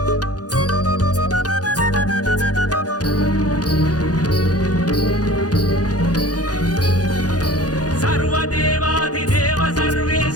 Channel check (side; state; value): right; late; 0.68 ms